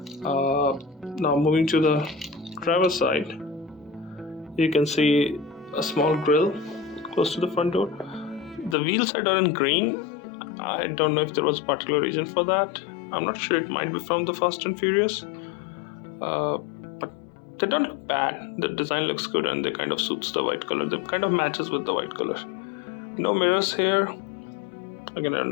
Now moving to the driver's side, you can see a small grille close to the front door. The wheels are done in green. I don't know if there was a particular reason for that. I'm not sure, it might be from the Fast and Furious. But they don't look bad. The design looks good and they kind of suits the white color. They kind of matches with the white color. No mirrors here. Again, I don't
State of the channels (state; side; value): drops out; right; at 8.8 s